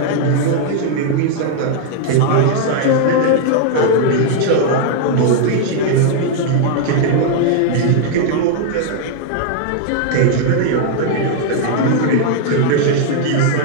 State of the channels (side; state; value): both; different; correlation -0.01